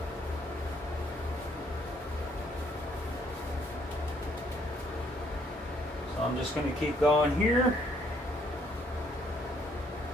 So I'm just going to keep going here.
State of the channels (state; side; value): normal; both; correlation 0.67